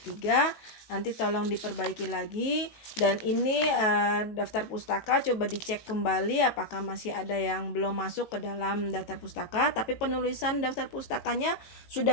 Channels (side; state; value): right; late; 19 ms